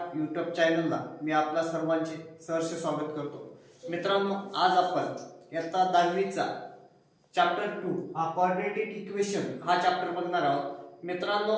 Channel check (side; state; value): both; identical; correlation 1.00